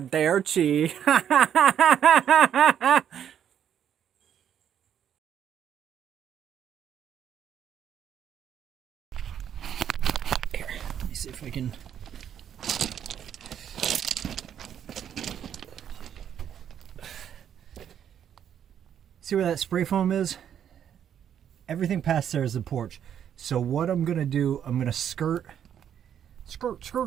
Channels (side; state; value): left; quieter; 9.3 dB